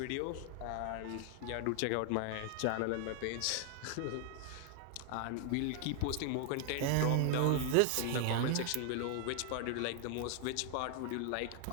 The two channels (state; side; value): different; both; correlation 0.00